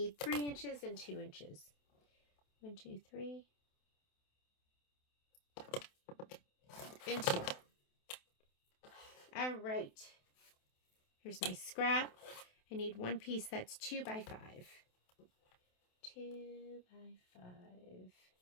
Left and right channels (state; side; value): late; right; 28 ms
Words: 3 inches and 2 inches. 1, 2, 3. And 2. All right. Here's my scrap. I need one piece that's 2 by 5. 2 by 5.